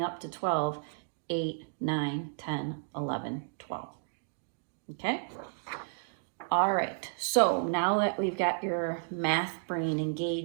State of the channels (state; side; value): silent; left; digital silence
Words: up to 12, 8, 9, 10, 11, 12. Okay? All right, so now that we've got your math brain